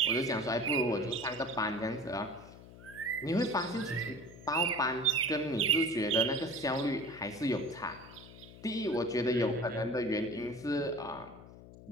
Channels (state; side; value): noise; left; hum, 18 dB below the sound